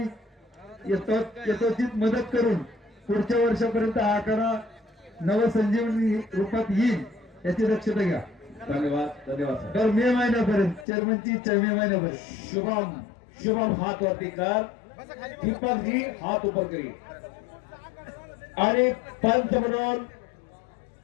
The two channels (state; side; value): drops out; right; at 10.9 s